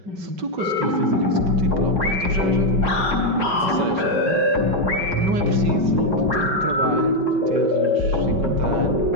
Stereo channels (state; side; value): late; left; 5.2 ms